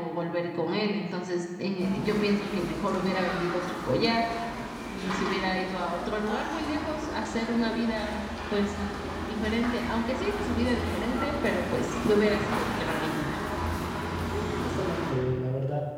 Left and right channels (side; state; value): both; identical; correlation 1.00